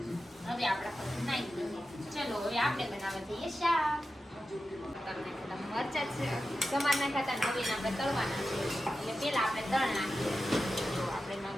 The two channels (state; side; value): normal; both; correlation 0.92